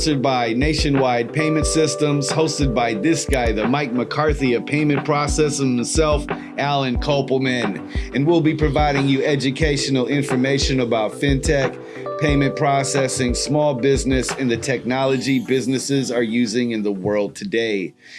by Nationwide Payment Systems, hosted by this guy, the Mike McCarthy of payment processing himself, Alan Kopelman. And we'll be providing you educational information about fintech, payment processing, small business, and the technology businesses are using in the world today.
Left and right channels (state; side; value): identical; both; correlation 1.00